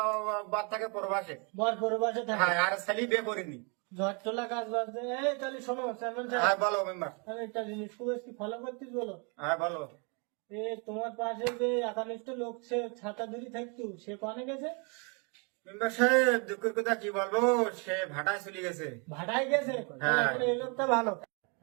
বাদ থাকে পরবাসে। বর পূর্বাসে থাকে। হ্যাঁ, আর ছেলে বিয়ে করিনি। ঝড় তোলা কাজ বাজছে। এই তাহলে শোনো চেয়ারম্যান হ্যাঁ সাহেব, বলো মেম্বার। আমি একটা জিনিস খুব কি ফলো করতিস বলো। হ্যাঁ বলো। এ তোমার পাশে যে একানিষ্ঠ লোক সে ছাতা ধরি থাকতো সে কনে গেছে? মেম্বার সাহেব, দুঃখের কথা কি বলবো, সে ভাটায় চলে গেছে। ভাটায় গেছে। হ্যাঁ। তাহলে এই লোকটা ভালো।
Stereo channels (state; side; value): quieter; left; 34.4 dB